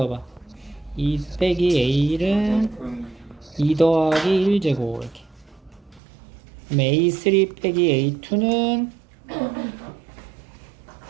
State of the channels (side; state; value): left; drops out; at 6.0 s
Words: 2 빼기 A는 2 더하기 1제곱 이렇게. 그럼 A3 빼기 A2는